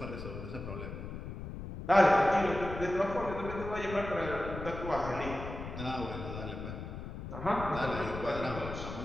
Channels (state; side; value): noise; left; rumble, 8 dB below the sound